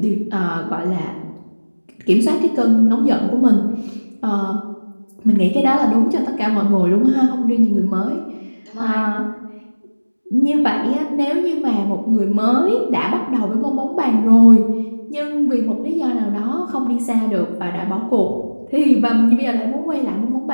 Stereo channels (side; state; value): both; inverted; correlation -1.00